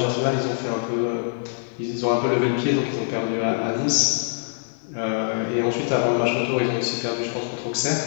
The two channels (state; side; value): silent; right; digital silence